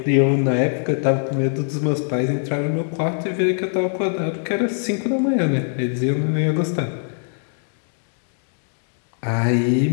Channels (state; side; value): silent; right; digital silence